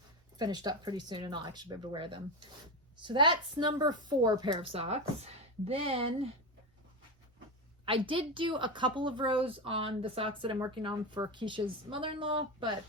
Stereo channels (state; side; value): normal; both; correlation 0.16